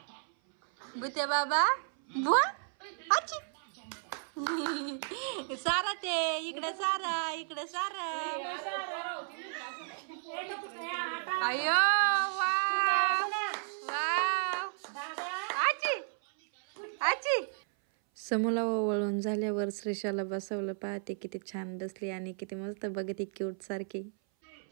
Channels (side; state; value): left; silent; 56 dB below the other